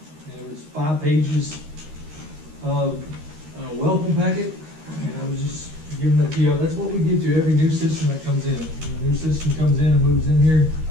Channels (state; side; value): late; left; 13 ms